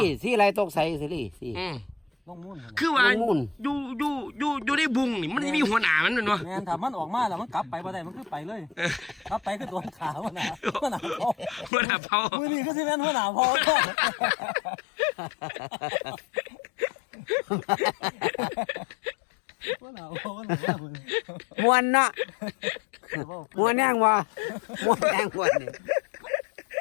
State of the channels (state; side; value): drops out; right; at 11.7 s